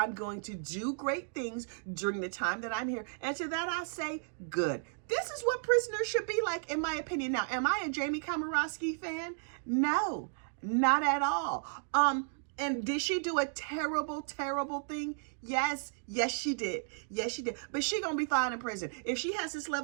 going to do great things during the time that I'm here. And to that I say, good. This is what prisoners should be like, in my opinion. Now, am I a Jamie Komoroski fan? No, not at all. And did she do a terrible, terrible thing? Yes, she did. Yes, she did. But she gonna be fine in prison. If she has this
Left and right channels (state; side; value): silent; left; digital silence